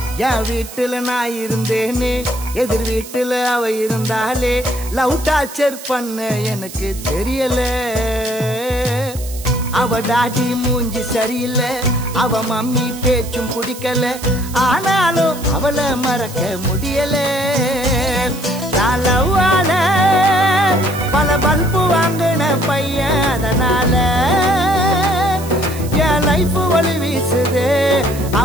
என் வீட்டுல நான் இருந்தேனே எதிர் வீட்டுல அவ இருந்தாலே லவ் டார்ச்சர் பண்ண எனக்கு தெரியல அவ டாடி மூஞ்சி சரியில்லை அவ மம்மி பேச்சும் பிடிக்கல ஆனாலும் அவளை மறக்க முடியல லவ்வால பல பல்பு வாங்கின பையன் அதனால என் லைஃப் வழி வீசுது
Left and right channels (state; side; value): noise; right; hiss, 14 dB below the sound